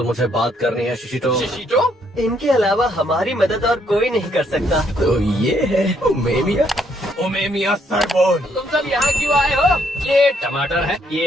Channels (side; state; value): both; normal; correlation 0.71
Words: मुझे बात करनी है शिशिटो। शिशिटो? इनके अलावा हमारी मदद और कोई नहीं कर सकता। तो ये है ओमे मिया। ओमे मिया सरबोन। तुम सब यहाँ क्यों आए हो? ये टमाटर है,